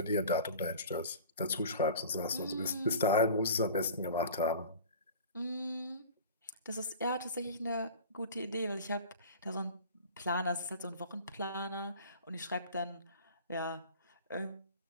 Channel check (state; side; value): inverted; both; correlation -0.39